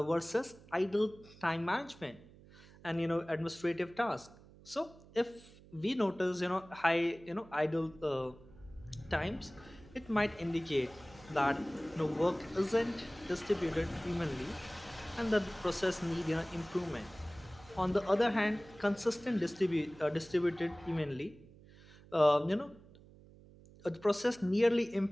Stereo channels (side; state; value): right; noise; hum, 22 dB below the sound